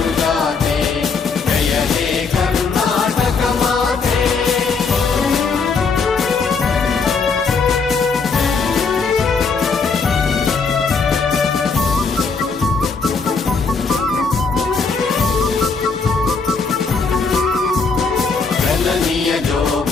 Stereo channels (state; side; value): quieter; right; 4.8 dB